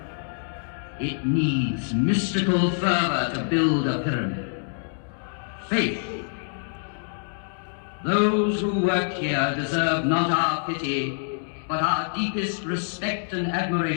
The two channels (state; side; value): silent; right; digital silence